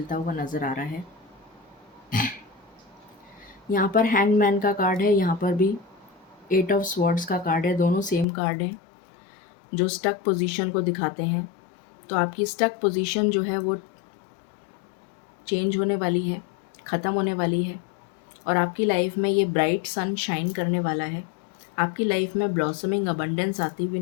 हुआ नज़र आ रहा है। यहाँ पर हैंगमैन का कार्ड है, यहाँ पर भी 8 ऑफ स्वॉर्ड्स का कार्ड है। दोनों सेम कार्ड हैं जो स्टक पोजीशन को दिखाते हैं। तो आपकी स्टक पोजीशन जो है वो चेंज होने वाली है, ख़त्म होने वाली है, और आपकी लाइफ में ये ब्राइट सन शाइन करने वाला है। आपकी लाइफ में ब्लॉसमिंग अबंडेंस आती हुई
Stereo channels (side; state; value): right; drops out; at 8.2 s